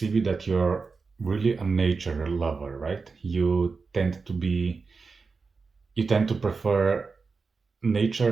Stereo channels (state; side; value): quieter; left; 4.6 dB